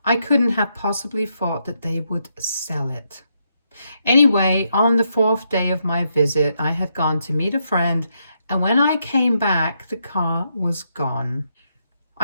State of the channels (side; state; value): both; inverted; correlation -0.79